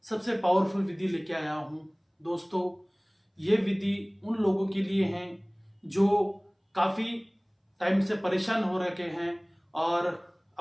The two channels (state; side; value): identical; both; correlation 1.00